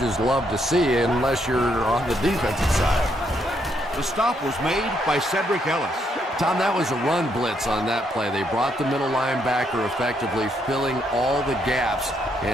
love to see unless you're on the defensive side. The stop was made by Cedric Ellis. Tom, that was a run blitz on that play. They brought the middle linebacker effectively filling all the gaps,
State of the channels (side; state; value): both; normal; correlation 0.75